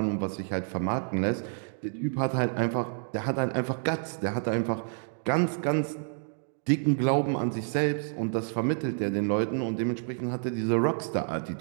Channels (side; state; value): left; silent; digital silence